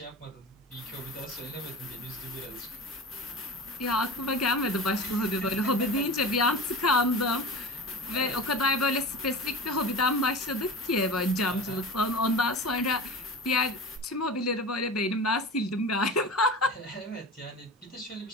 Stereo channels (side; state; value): both; normal; correlation 0.32